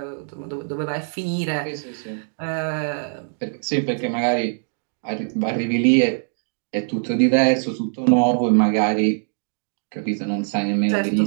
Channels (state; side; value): silent; left; digital silence